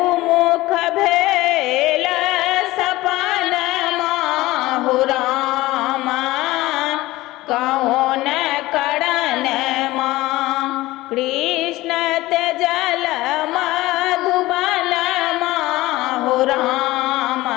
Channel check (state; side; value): quieter; right; 18.5 dB